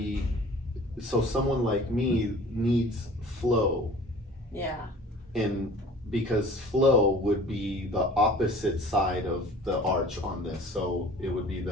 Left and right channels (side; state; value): both; normal; correlation 0.46